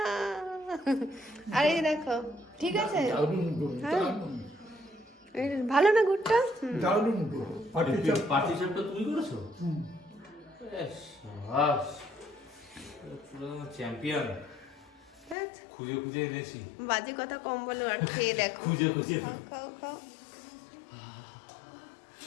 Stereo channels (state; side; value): drops out; right; at 15.4 s